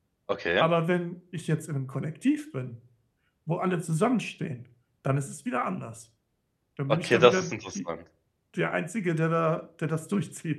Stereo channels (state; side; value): identical; both; correlation 1.00